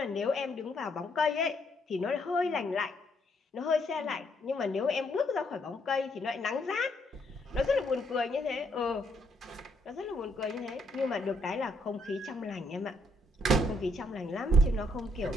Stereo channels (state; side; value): normal; both; correlation 0.72